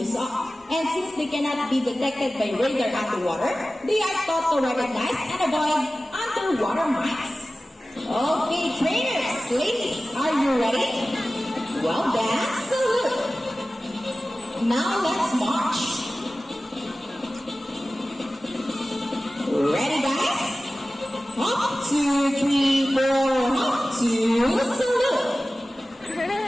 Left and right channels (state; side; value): normal; both; correlation 0.96